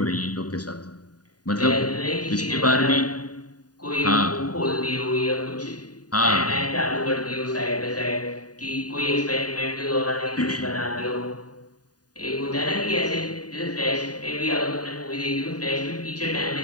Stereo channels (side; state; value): right; late; 0.68 ms